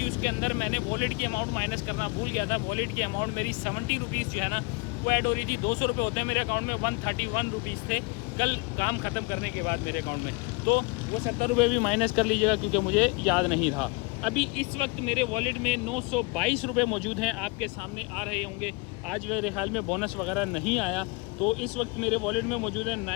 उसके अंदर मैंने वॉलेट की अमाउंट माइनस करना भूल गया था। वॉलेट की अमाउंट मेरी 70 रुपीज़ जो है ना वो ऐड हो रही थी। 200 रुपये होते हैं मेरे अकाउंट में, 131 रुपीज़ थे कल काम ख़त्म करने के बाद मेरे अकाउंट में। तो वो 70 रुपये भी माइनस कर लीजिएगा, क्योंकि मुझे याद नहीं रहा। अभी इस वक्त मेरे वॉलेट में 922 रुपये मौजूद हैं, आपके सामने आ रहे होंगे। आज मेरे हाल में बोनस वगैरह नहीं आया, तो इस वक्त मेरे वॉलेट में मौजूद है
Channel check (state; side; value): quieter; right; 28.3 dB